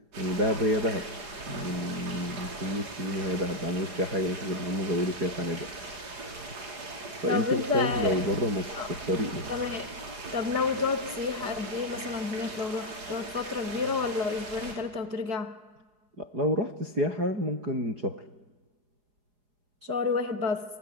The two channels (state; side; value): late; left; 4.8 ms